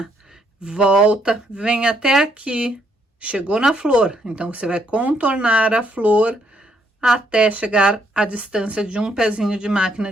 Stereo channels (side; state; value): both; normal; correlation 0.71